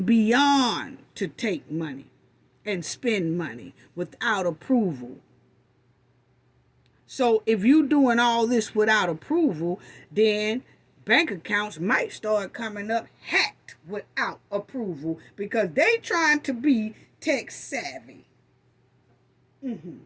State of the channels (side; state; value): both; identical; correlation 1.00